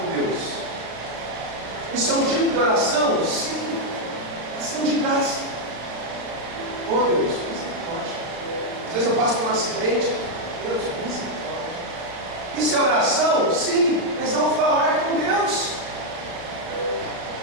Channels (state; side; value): late; left; 35 ms